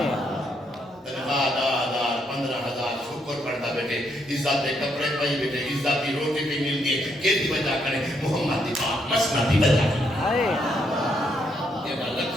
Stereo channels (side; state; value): both; normal; correlation 0.75